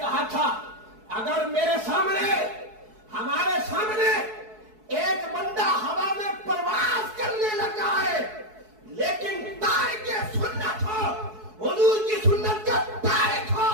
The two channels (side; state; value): left; late; 4.7 ms